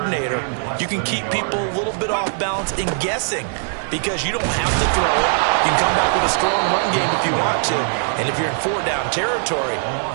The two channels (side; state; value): left; silent; 66 dB below the other